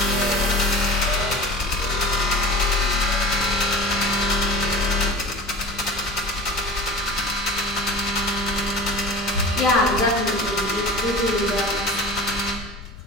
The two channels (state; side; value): noise; left; rumble, 15 dB below the sound